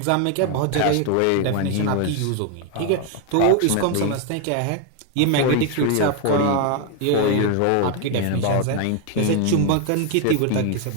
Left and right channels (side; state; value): both; different; correlation 0.01